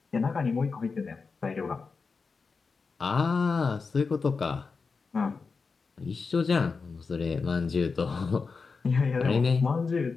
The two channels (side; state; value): right; quieter; 4.7 dB